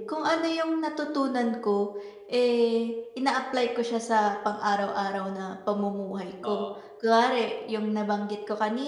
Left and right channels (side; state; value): both; identical; correlation 1.00